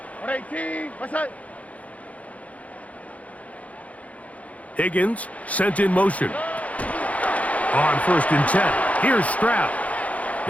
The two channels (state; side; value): late; right; 0.068 ms